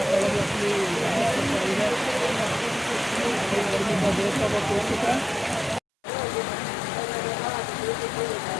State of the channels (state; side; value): drops out; right; at 5.8 s